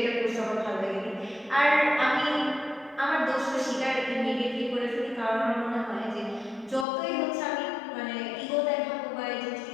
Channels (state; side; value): drops out; right; at 6.9 s